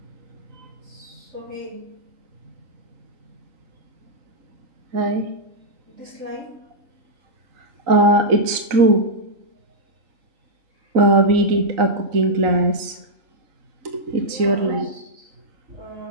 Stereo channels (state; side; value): late; left; 3.8 ms